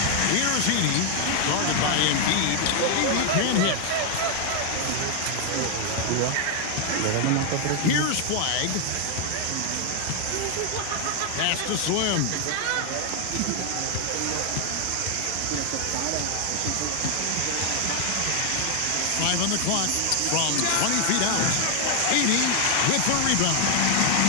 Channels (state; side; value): different; both; correlation 0.00